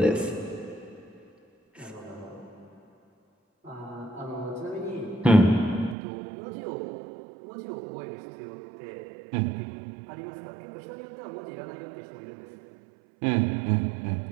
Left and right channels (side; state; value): left; drops out; at 6.0 s